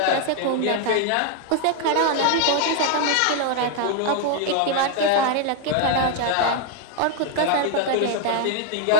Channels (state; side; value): different; both; correlation 0.00